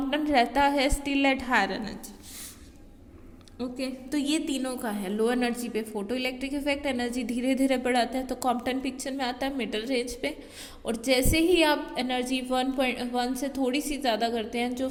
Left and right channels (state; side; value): identical; both; correlation 1.00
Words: रहता है still at higher energy. Okay तो ये तीनों का है। लो एनर्जी पे फोटो इलेक्ट्रिक इफेक्ट एनर्जी धीरे धीरे बढ़ाता है तो कॉम्पटन पिक्चर में आता है मिडल रेंज पे। और जैसे ही आप एनर्जी 1.1 से थोड़ी सी ज़्यादा करते हैं, जो